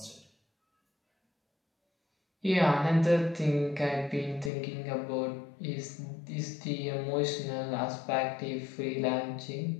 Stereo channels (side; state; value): right; drops out; at 4.5 s